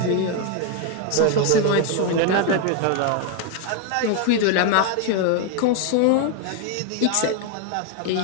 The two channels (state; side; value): different; both; correlation 0.01